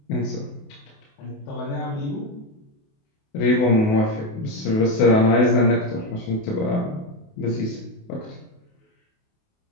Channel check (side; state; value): right; late; 28 ms